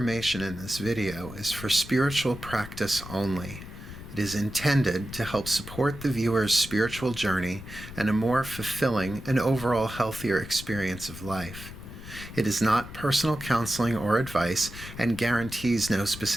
in this video is for spiritual practice only. It is intended to help support the viewer's spiritual journey and a more fulfilling and overall healthier experience of life. It is not personal counseling or advice and guarantees no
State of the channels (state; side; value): noise; left; rumble, 13 dB below the sound